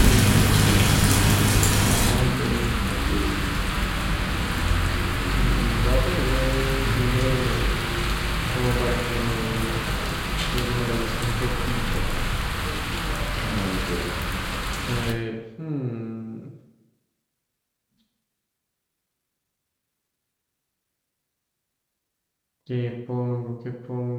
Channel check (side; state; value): both; identical; correlation 1.00